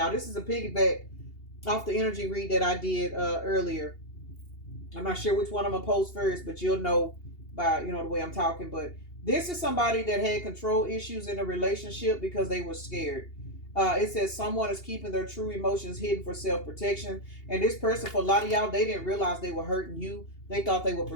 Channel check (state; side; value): late; right; 2.8 ms